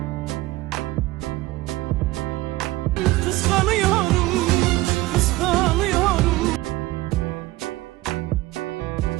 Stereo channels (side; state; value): left; quieter; 18.6 dB